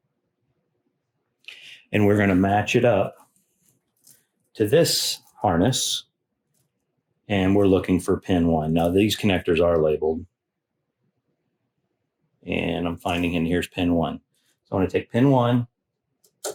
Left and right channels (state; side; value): identical; both; correlation 1.00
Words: And we're going to match it up to this harness. And we're looking for pin 1. Now these connectors are labeled. And I'm finding in here's pin 1. So I'm going to take pin 1.